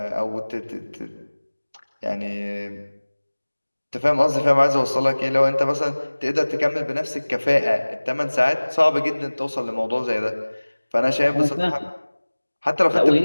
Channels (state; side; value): inverted; both; correlation -1.00